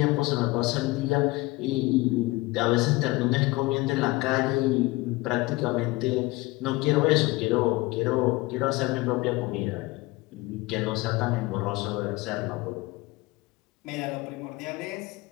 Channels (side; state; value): right; quieter; 21.4 dB